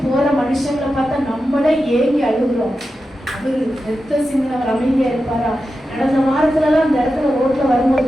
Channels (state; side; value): normal; both; correlation 0.91